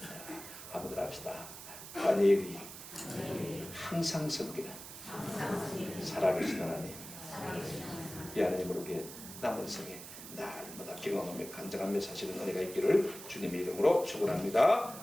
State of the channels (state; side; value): noise; right; hiss, 12 dB below the sound